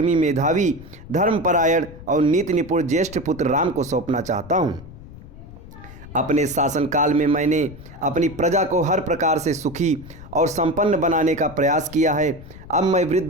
मेधावी, धर्मपरायण और नीति निपुण ज्येष्ठ पुत्र राम को सौंपना चाहता हूँ। अपने शासनकाल में मैंने अपनी प्रजा को हर प्रकार से सुखी और संपन्न बनाने का प्रयास किया है। अब मैं वृद्ध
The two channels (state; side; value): noise; left; rumble, 17 dB below the sound